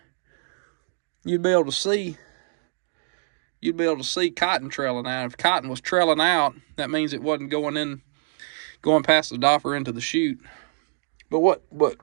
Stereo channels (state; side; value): silent; left; digital silence